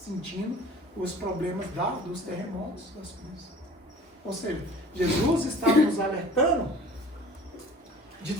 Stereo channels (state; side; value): normal; both; correlation 0.45